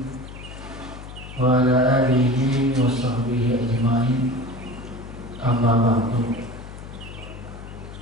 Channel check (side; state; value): left; noise; hum, 13 dB below the sound